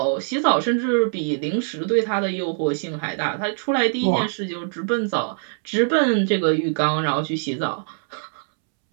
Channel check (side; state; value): left; silent; 64 dB below the other